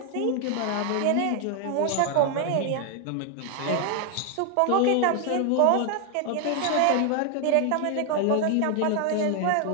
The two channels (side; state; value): both; different; correlation 0.00